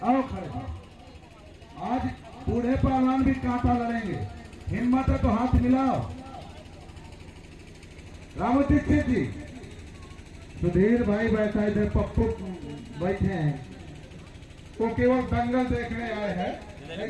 आओ खड़े। आज बूढ़े पहलवान भी कांटा लड़ेंगे, हिम्मत है तो हाथ मिलाओ। रामू दीक्षित जी, सुधीर भाई बैठा इधर, पप्पू बैठे हैं, वो केवल दंगल देखने आए हैं,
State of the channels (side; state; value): both; identical; correlation 1.00